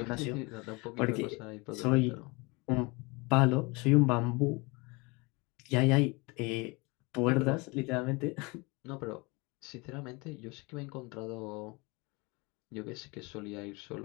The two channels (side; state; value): right; quieter; 27.0 dB